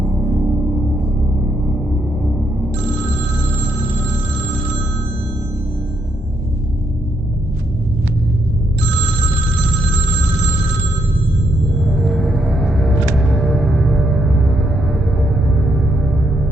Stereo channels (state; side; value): normal; both; correlation 0.77